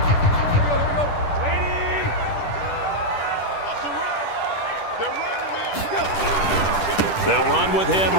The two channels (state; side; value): late; right; 10 ms